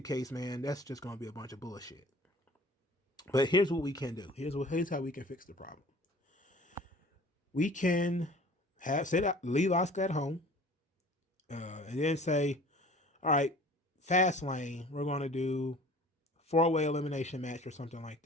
case, man, that's just going to be a bunch of bullshit. But here's what we can do. Here's how we can fix the problem. We can leave Asuka at home, and then say, all right, Fastlane, we're going to do 4-way elimination match or something like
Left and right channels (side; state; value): both; normal; correlation 0.47